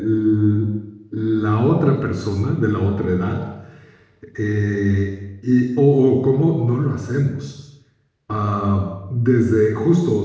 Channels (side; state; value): both; identical; correlation 1.00